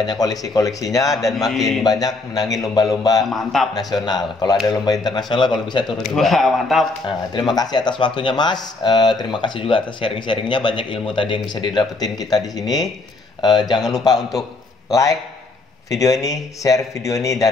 koleksinya dan makin banyak menangin lomba-lomba nasional. Kalau ada lomba internasional, kalau bisa turun juga. Wah, mantap. Terima kasih atas waktunya Mas. Terima kasih juga atas sharing-sharingnya. Banyak ilmu tadi yang bisa didapetin kita di sini. Jangan lupa untuk like video ini, share video ini,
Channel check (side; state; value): right; quieter; 3.3 dB